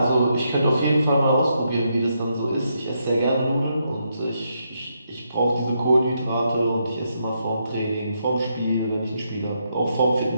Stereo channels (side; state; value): both; inverted; correlation -0.79